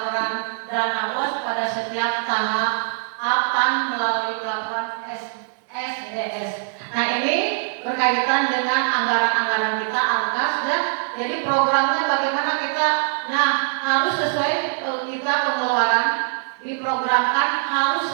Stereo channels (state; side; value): silent; left; digital silence